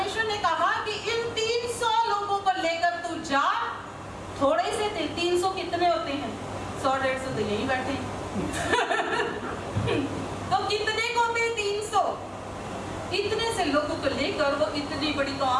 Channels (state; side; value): identical; both; correlation 1.00